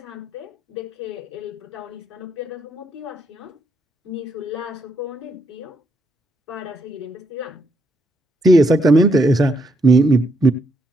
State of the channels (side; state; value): both; normal; correlation 0.75